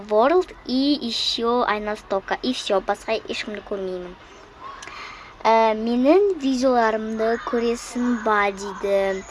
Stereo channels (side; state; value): both; identical; correlation 1.00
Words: и еще Айнас тока. И все, басқа ешкімді көрмеймін. Менің видеоларымды көресің ба дейді.